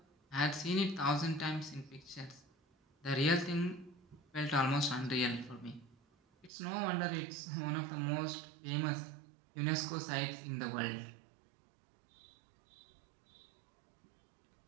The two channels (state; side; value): drops out; left; at 6.5 s